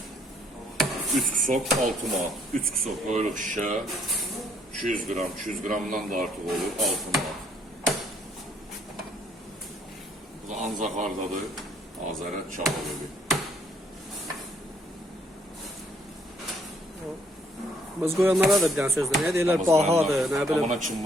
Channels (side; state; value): both; normal; correlation 0.66